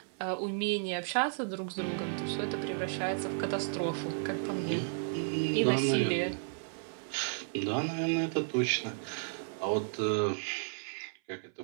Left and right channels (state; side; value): silent; left; 56 dB below the other